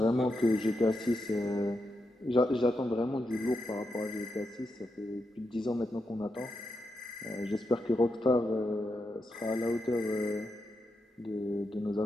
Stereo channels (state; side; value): normal; both; correlation 0.86